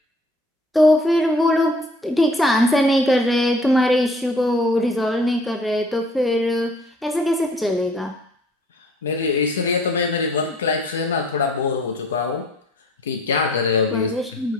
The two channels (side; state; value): both; normal; correlation 0.55